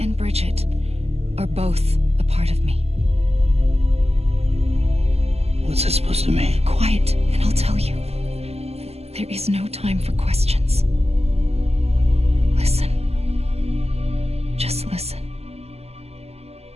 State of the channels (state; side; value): late; left; 0.30 ms